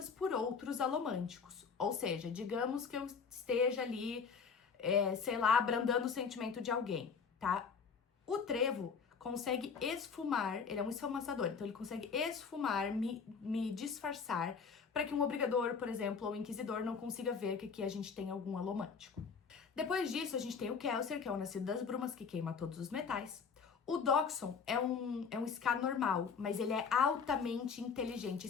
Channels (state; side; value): quieter; right; 5.8 dB